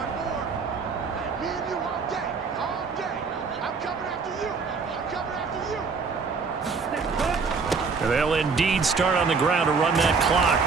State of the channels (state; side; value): quieter; left; 5.0 dB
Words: 4. Me and you all day, all day. I'm coming after you. I'm coming after you. They'll indeed start on the ground to run that clock.